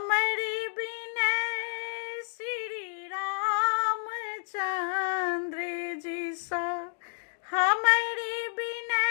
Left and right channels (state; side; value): silent; right; digital silence